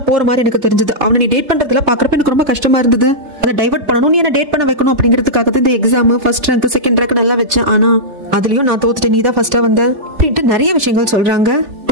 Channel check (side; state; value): left; late; 3.3 ms